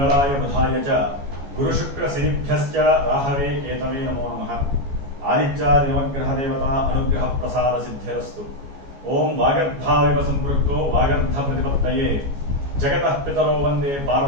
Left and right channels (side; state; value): left; late; 14 ms